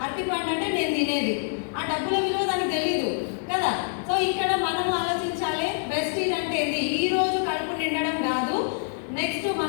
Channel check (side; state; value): right; silent; digital silence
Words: అరటి పండు అంటే నేను తినేది. ఆ డబ్బుల విలువ దానికి తెలీదు కదా. సో ఇక్కడ మనం ఆలోచించాలి, ప్రెస్టీజ్ అంటే ఏంది? ఈ రోజు కడుపు నిండడం కాదు, నెక్స్ట్